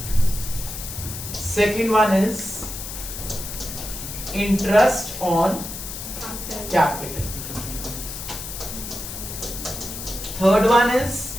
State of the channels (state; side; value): noise; left; hiss, 8 dB below the sound